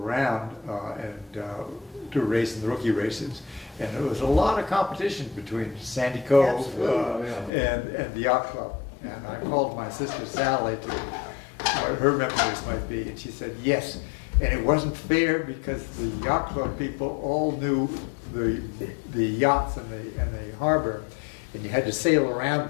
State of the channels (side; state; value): right; drops out; at 7.5 s